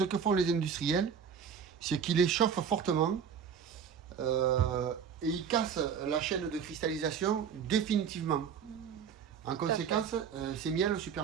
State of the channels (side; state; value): left; quieter; 7.3 dB